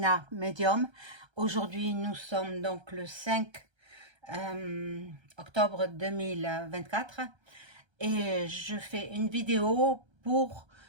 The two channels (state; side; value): late; left; 1.3 ms